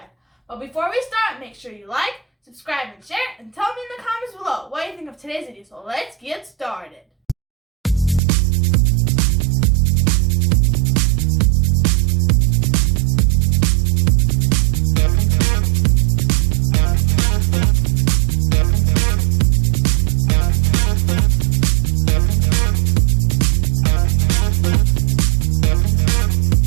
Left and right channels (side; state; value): left; drops out; at 8.2 s